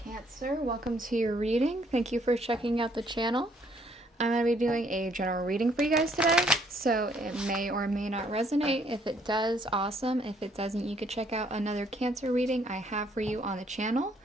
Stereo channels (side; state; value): both; normal; correlation 0.66